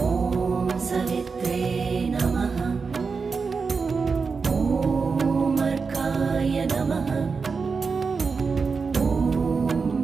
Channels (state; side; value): quieter; left; 4.9 dB